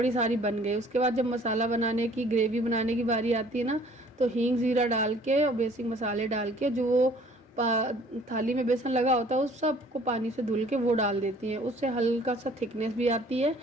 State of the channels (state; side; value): normal; both; correlation 0.54